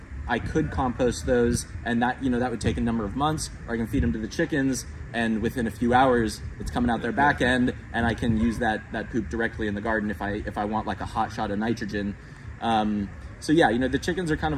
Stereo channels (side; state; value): both; identical; correlation 1.00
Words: I could compost those, and that, you know, that would take a number of months, or I can feed them to the chickens, and within a few hours, it's coming out their back end, and I can use that poop directly in the garden if I want like a hot shot of nitrogen. So yeah, you know, the chickens are kind